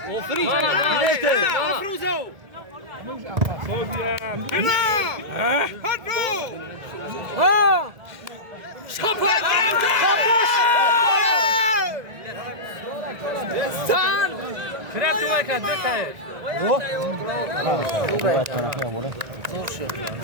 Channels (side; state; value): left; late; 1.7 ms